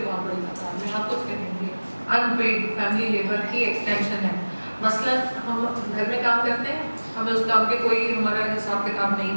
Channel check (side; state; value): both; inverted; correlation -1.00